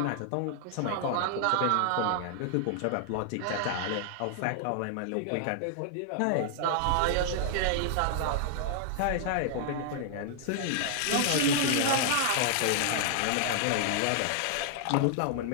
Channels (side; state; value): both; different; correlation -0.01